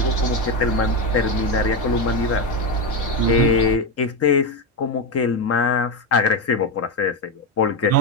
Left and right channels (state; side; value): normal; both; correlation 0.11